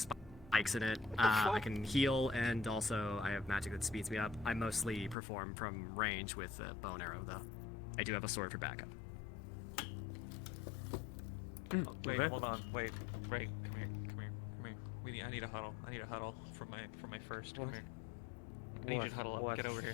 in it. I can heal, and also I have magic that speeds me up. I mostly perform from range with a bow and arrow, though. I do have a sword for backup. Oh, wait, hold on. Wait, Ray, come here. I need a huddle. I need a huddle for my first. Come here. I need you to huddle up. Get over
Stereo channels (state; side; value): drops out; right; at 5.2 s